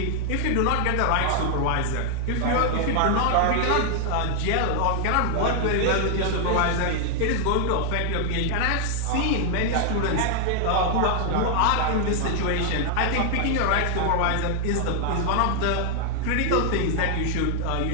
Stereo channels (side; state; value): both; different; correlation 0.00